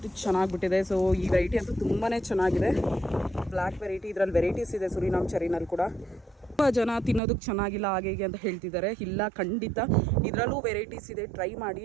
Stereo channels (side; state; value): left; drops out; at 7.2 s